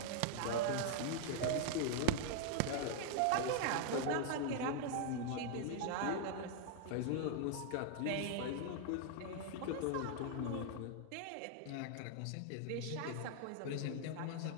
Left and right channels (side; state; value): both; different; correlation 0.00